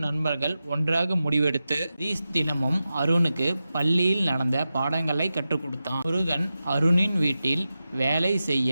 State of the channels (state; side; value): inverted; both; correlation -0.92